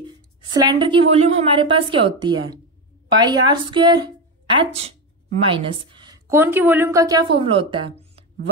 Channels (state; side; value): normal; both; correlation 0.15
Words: सिलेंडर की वॉल्यूम हमारे पास क्या होती है, pi R square H minus cone की वॉल्यूम का क्या फॉर्मूला होता है,